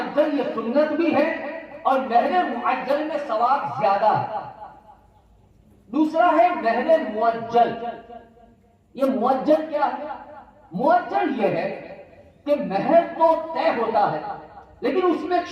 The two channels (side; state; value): both; identical; correlation 1.00